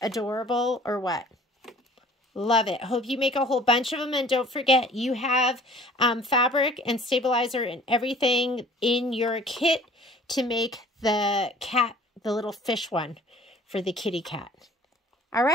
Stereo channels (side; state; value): both; normal; correlation 0.50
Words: adorable or what? Love it. Hope you make a whole bunch of them. And don't forget, you have fabric and stabilizer and everything in your kit to make the cat, the little fish one for the kitty cat. All